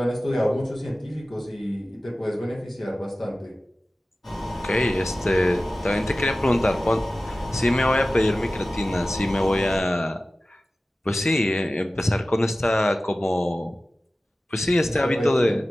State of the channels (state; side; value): normal; both; correlation 0.96